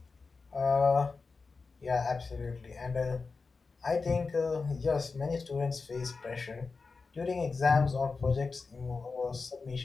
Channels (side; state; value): right; quieter; 4.4 dB